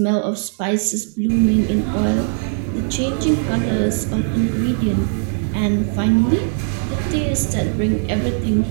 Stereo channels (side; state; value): left; silent; 58 dB below the other